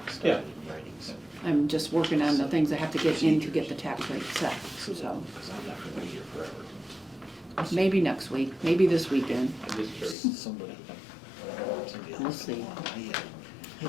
Yeah. I'm just working on the things I have to get in to get the tax rate set, so Because I'm not gonna be here forever. maybe next week, maybe this weekend. I'm just curious. Somebody We'll else. see.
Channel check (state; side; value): drops out; right; at 10.2 s